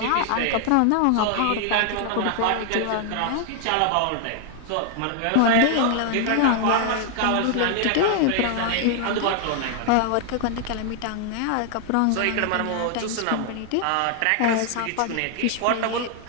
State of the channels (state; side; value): different; both; correlation 0.00